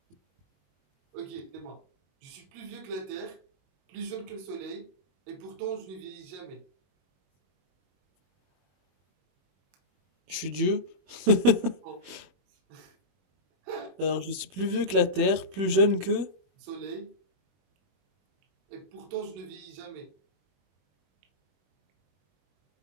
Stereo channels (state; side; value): late; left; 21 ms